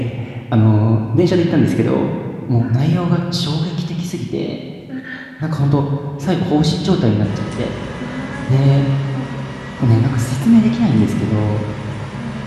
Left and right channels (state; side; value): identical; both; correlation 1.00